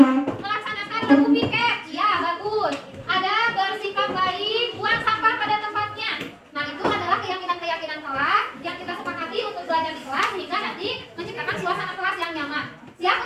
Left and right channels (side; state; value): both; identical; correlation 1.00